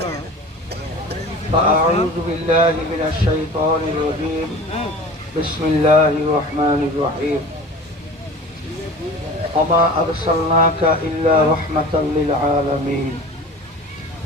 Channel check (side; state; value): both; normal; correlation 0.39